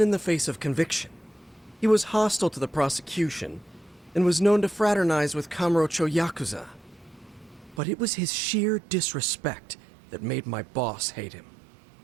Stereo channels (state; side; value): drops out; left; at 7.8 s